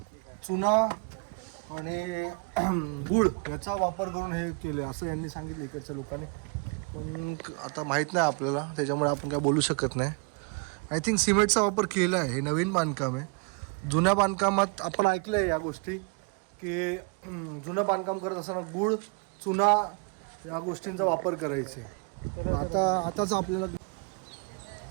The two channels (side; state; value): left; quieter; 34.4 dB